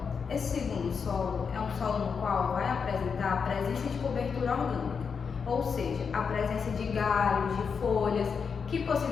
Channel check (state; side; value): quieter; right; 6.0 dB